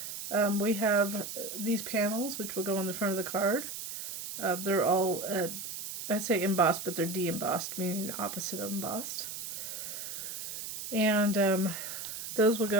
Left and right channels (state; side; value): noise; right; hiss, 7 dB below the sound